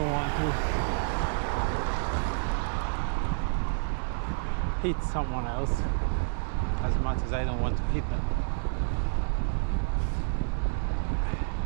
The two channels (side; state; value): left; silent; digital silence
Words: want to hit someone else as much as I don't want to hit them.